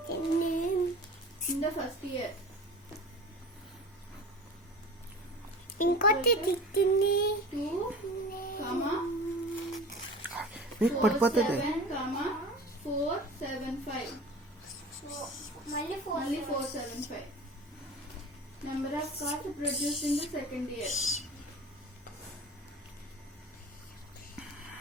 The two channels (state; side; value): normal; both; correlation 0.37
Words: in the first year. ఇంకోటి తిట్టింది 2, పడిపోతుంది. 475. మళ్ళీ 475. Number of cars produced in the second year.